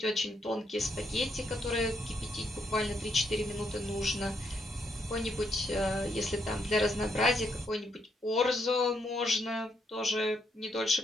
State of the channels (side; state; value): both; normal; correlation 0.76